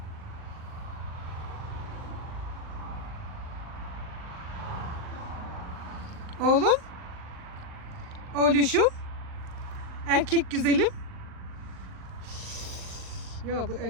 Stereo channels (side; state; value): left; late; 39 ms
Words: Oğlum, oğluşum, erkek güzelim. Ya bu